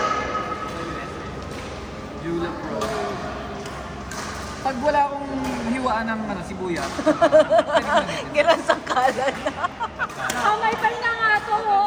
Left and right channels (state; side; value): identical; both; correlation 1.00